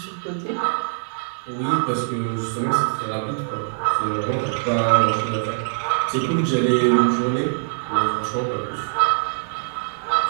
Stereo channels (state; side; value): silent; left; 63 dB below the other